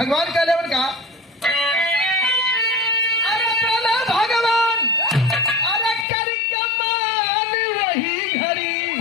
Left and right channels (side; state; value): right; drops out; at 6.1 s